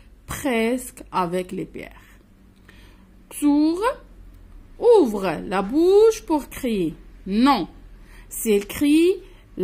presque avec les pierres. Xur ouvre la bouche pour crier. Non, s'il crie,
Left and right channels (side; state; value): both; identical; correlation 1.00